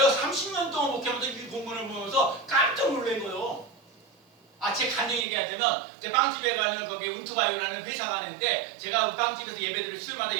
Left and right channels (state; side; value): drops out; left; at 5.2 s